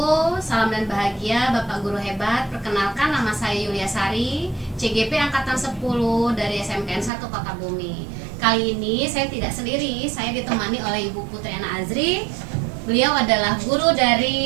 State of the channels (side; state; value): left; drops out; at 7.1 s